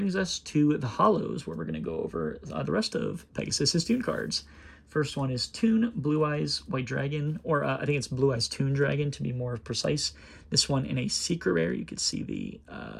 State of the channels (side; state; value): both; identical; correlation 1.00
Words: us to the Hollows, where we're going to go over the rest of Pegasus's Toon cards. First one is Toon Blue Eyes White Dragon, or I think it's Blue Eyes Toon Dragon to be more precise. This one in a secret rare. You can see the